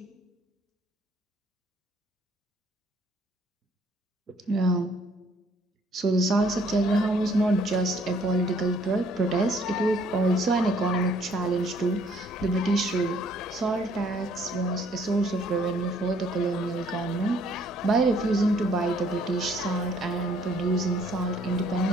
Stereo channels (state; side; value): normal; both; correlation 0.62